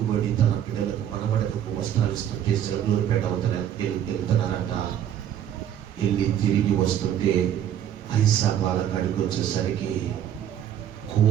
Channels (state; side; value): quieter; left; 10.3 dB